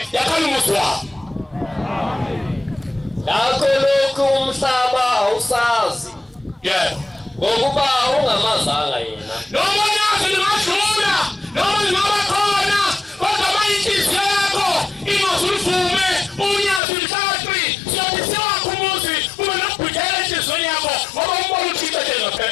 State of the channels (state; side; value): drops out; right; at 16.8 s